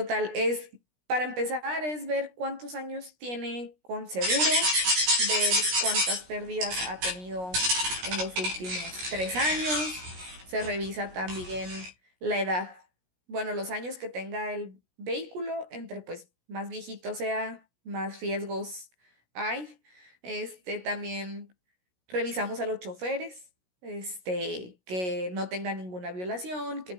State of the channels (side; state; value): left; late; 16 ms